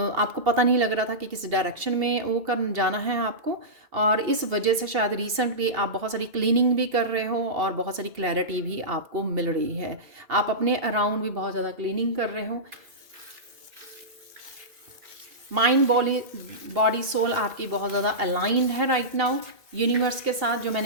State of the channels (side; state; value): left; late; 2.7 ms